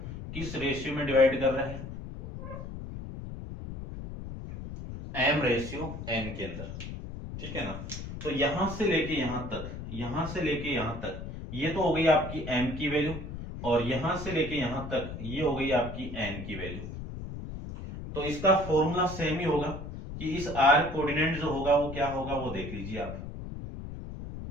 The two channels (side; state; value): left; noise; rumble, 9 dB below the sound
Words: किस रेशियो में डिवाइड कर रहा है, m/n के अंदर। ठीक है ना, तो यहां से लेके यहां तक, यहां से लेके यहां तक, ये तो हो गई आपकी m की वैल्यू, और यहां से लेके यहां तक ये हो गई आपकी n की वैल्यू। तो इसका फॉर्मूला सेम ही होगा, कि इस r कोऑर्डिनेट जो होगा वो क्या होगा, वो देख लीजिए आप।